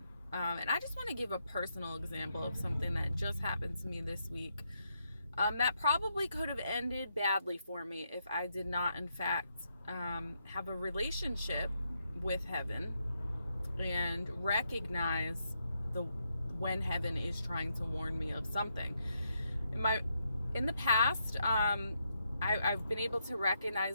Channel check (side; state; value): both; inverted; correlation -0.80